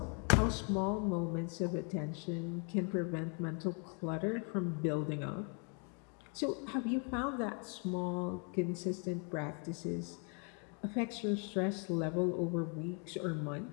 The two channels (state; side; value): quieter; right; 38.7 dB